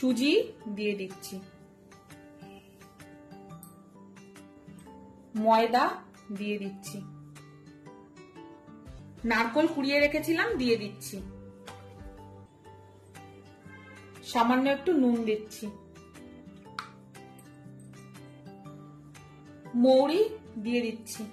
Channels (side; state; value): both; identical; correlation 1.00